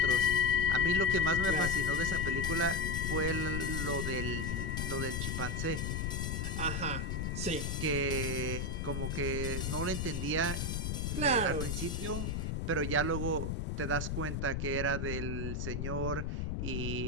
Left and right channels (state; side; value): noise; left; rumble, 1 dB below the sound